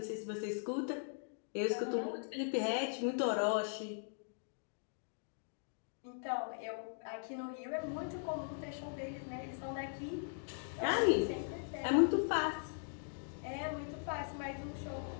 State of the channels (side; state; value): right; silent; digital silence